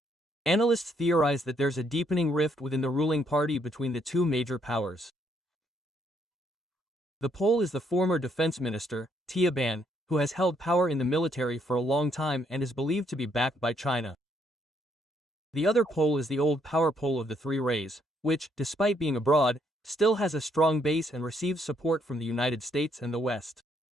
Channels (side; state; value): both; normal; correlation 0.71